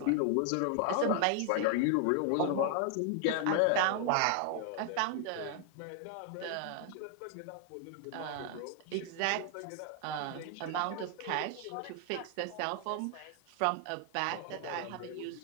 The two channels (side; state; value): both; different; correlation 0.00